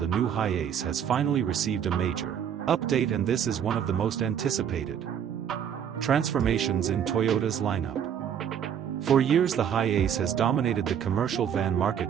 new HiAce has finally received a major update, and this is one of the most anticipated transformations in Toyota's lineup. For years the HiAce has dominated the commercial van market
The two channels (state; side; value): quieter; left; 8.7 dB